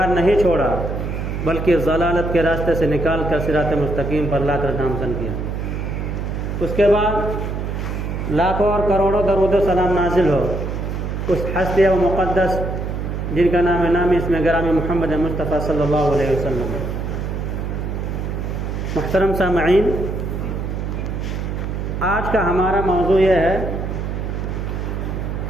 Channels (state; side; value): noise; right; hum, 3 dB below the sound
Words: نہیں چھوڑا بلکہ ضلالت کے راستے سے نکال کر صراط مستقیم پر لا کر نامزن کیا۔ اس کے بعد لاکھوں اور کروڑوں درود و سلام نازل ہو اس ہستی و مقدس جن کا نام نامی اسم گرامی محمد مصطفیٰ صلی اللہ علیہ وسلم۔ محترم سامعین، آج کا ہمارا موضوع یہ ہے